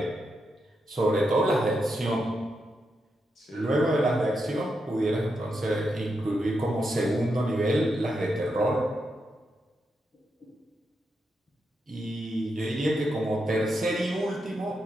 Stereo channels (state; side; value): normal; both; correlation 0.84